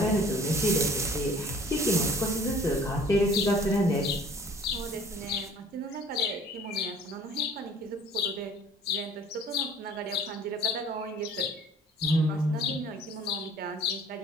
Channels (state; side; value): normal; both; correlation 0.51